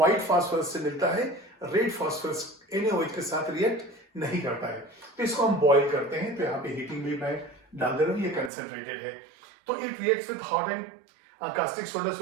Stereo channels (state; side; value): drops out; left; at 8.5 s